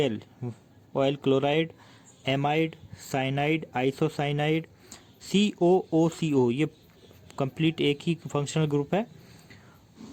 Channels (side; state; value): both; identical; correlation 1.00